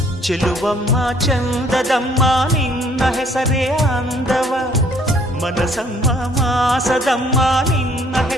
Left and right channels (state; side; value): normal; both; correlation 0.62